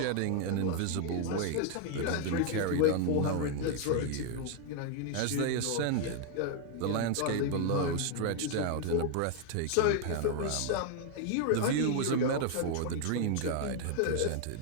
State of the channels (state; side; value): different; both; correlation 0.00